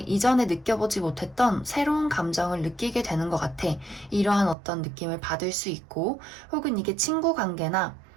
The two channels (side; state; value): left; drops out; at 4.5 s